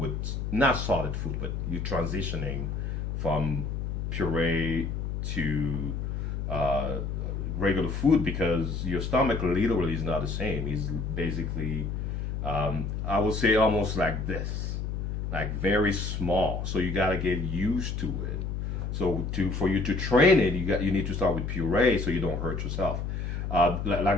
not solid food, but you're transitioning from puree to regular food, because your stomach literally is not the same. It's basically, I would say, almost like this, like very small. So you got to get used to it. So for you to train it, you need to start with puree so you don't hurt yourself.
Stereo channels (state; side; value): noise; left; hum, 3 dB below the sound